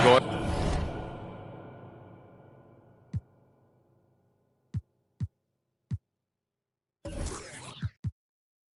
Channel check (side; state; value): both; identical; correlation 1.00